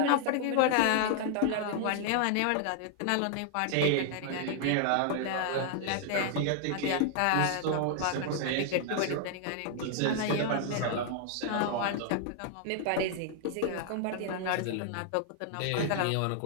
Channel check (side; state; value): both; different; correlation 0.00